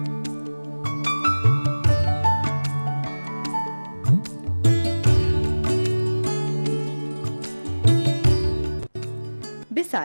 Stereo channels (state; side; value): inverted; both; correlation -1.00